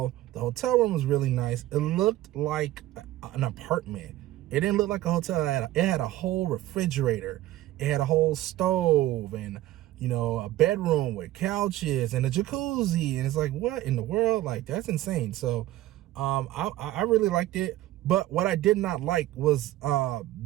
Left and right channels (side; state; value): left; quieter; 15.3 dB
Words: The hotel room was really nice. It looked like an apartment. It didn't look like a hotel. It had a whole refrigerator. It had a whole stove, and you know, a bedroom with couches and a jacuzzi. And it's like, what in the world? Like, that's insane. So I really liked it. But what I did not like was